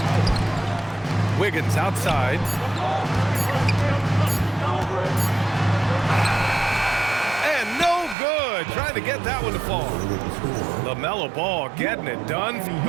Wiggins outside. And no good. Trying to get that one to fall. LaMelo Ball getting it done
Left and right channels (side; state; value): left; drops out; at 8.2 s